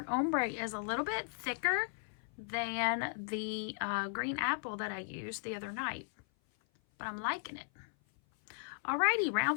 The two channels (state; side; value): silent; right; 53 dB below the other